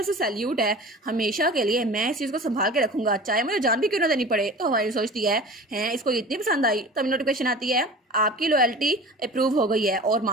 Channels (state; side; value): normal; both; correlation 0.38